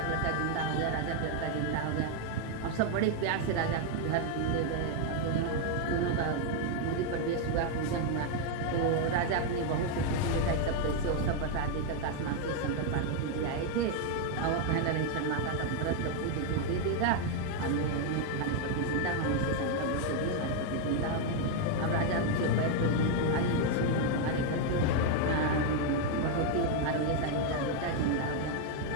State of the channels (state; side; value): different; both; correlation 0.01